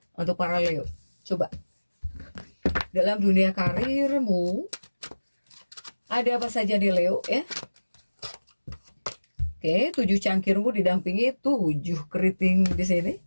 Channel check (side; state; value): both; inverted; correlation -1.00